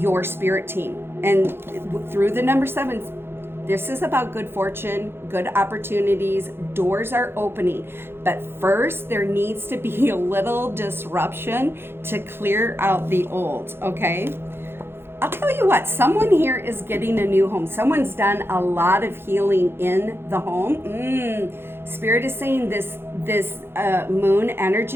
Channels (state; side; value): late; left; 0.11 ms